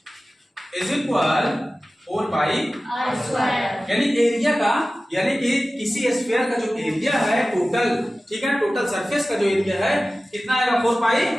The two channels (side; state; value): both; normal; correlation 0.96